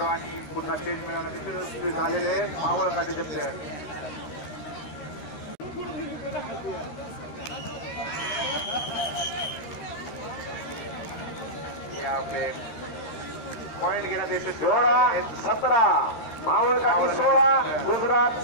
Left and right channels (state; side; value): late; right; 13 ms